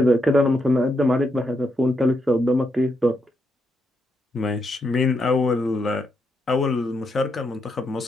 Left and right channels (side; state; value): both; normal; correlation 0.81